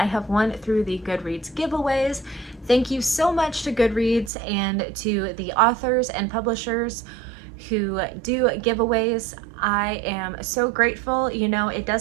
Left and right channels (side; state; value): left; drops out; at 4.3 s